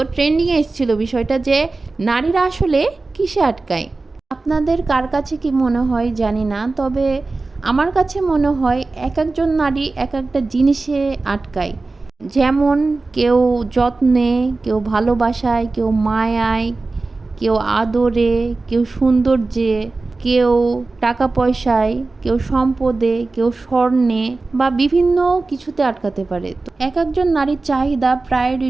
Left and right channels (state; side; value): quieter; left; 3.5 dB